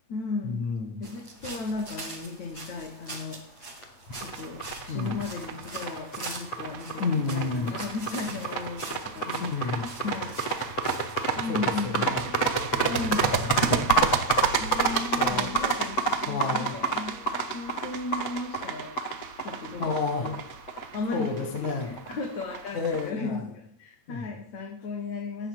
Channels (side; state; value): right; late; 8.1 ms